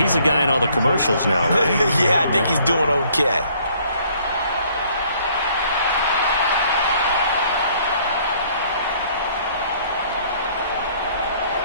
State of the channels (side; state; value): both; inverted; correlation -0.61